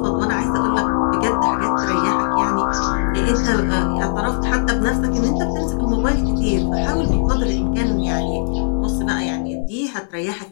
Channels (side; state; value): right; silent; 67 dB below the other